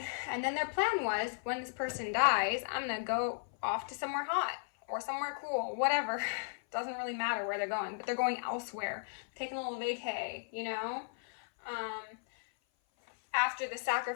And then their plan was, when this person dies, I'm gonna go off to somewhere hot or somewhere cool, whatever. Doesn't really matter where they're going, but they're going elsewhere, taking a little vacay, you know? after the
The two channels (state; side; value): silent; right; 54 dB below the other